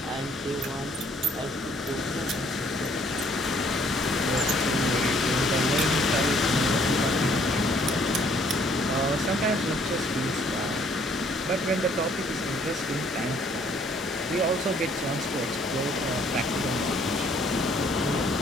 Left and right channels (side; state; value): both; normal; correlation 0.62